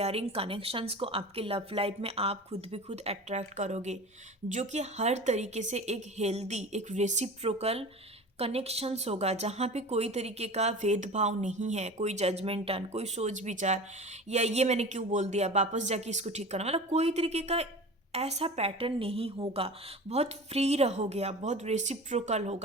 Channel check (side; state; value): both; normal; correlation 0.35